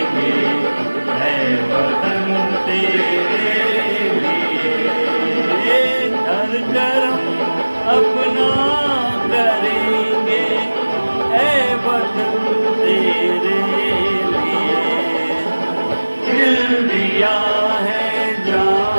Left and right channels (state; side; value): inverted; both; correlation -1.00